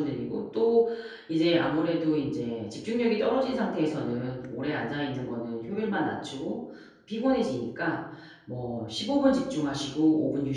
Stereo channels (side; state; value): both; identical; correlation 1.00